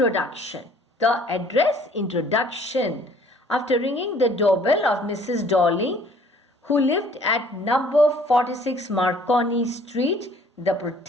The address introduction. After ringing the doorbell of Mrs. Darling, who lived at number 46 Marconi Street, the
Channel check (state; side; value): normal; both; correlation 0.56